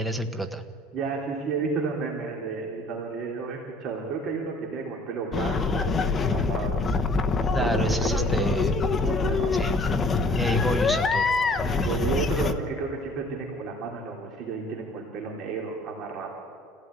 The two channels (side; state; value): both; normal; correlation 0.53